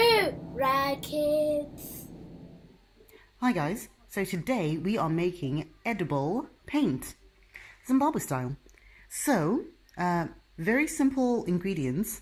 Kids. Hi guys, so today we are making edible paint, Zimbabwe style. So, very simple ingredients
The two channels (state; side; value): identical; both; correlation 1.00